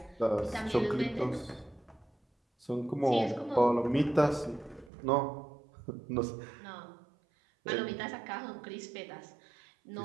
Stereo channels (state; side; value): drops out; left; at 4.9 s